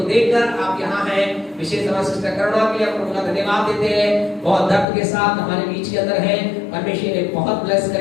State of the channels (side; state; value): right; drops out; at 4.9 s